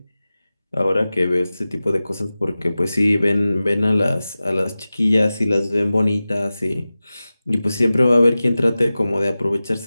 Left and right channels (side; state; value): both; inverted; correlation -0.96